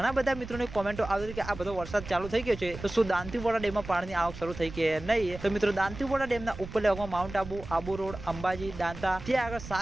બધા મિત્રોની કોમેન્ટો આવી કે આ બધો વરસાદ ચાલુ થઈ ગયો છે તો શું દાંતીવાડા ડેમમાં પાણીની આવક શરૂ થઈ કે નહીં। તો મિત્રો દાંતીવાડા ડેમના ઉપરલા ભાગમાં માઉન્ટ આબુ, આબુ રોડ, અંબાજી, દાંતા ત્યાં આગળ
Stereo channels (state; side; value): noise; right; rumble, 12 dB below the sound